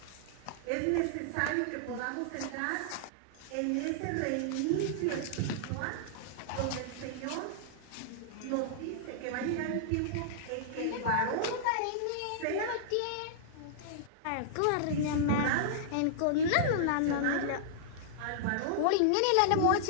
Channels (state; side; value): different; both; correlation -0.02